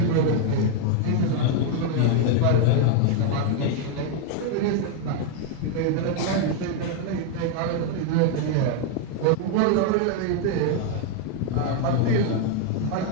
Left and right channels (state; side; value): different; both; correlation 0.00